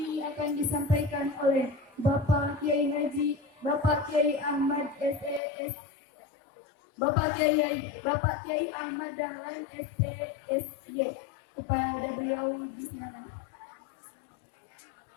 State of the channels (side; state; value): right; drops out; at 5.4 s